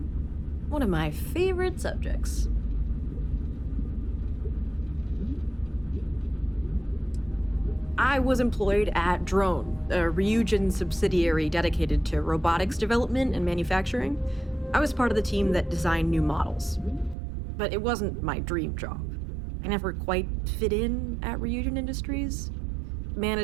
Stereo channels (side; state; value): left; drops out; at 17.2 s